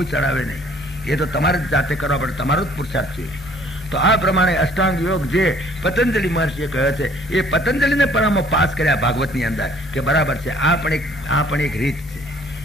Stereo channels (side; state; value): both; normal; correlation 0.57